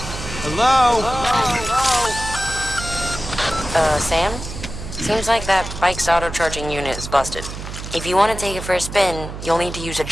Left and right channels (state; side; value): noise; right; hum, 9 dB below the sound